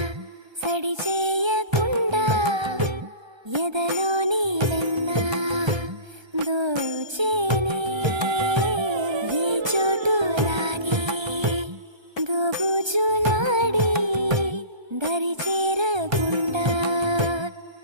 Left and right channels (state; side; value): late; left; 1.3 ms